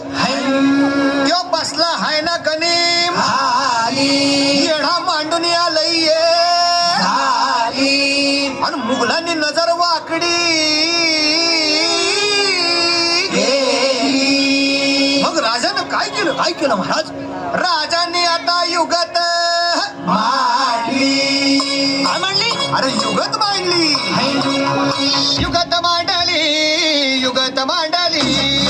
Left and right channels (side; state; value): both; identical; correlation 1.00